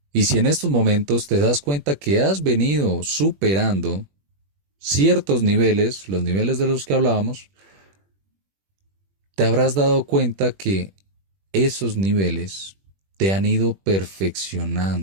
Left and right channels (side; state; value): left; late; 21 ms